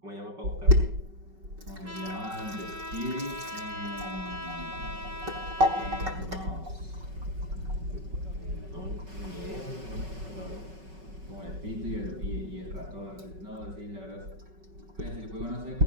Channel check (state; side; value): late; left; 5.3 ms